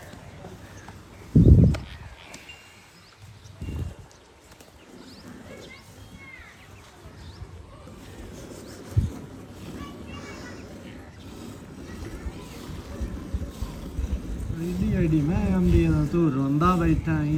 आईडी मैं आंदी है तू रोंदा बैठा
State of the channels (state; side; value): identical; both; correlation 1.00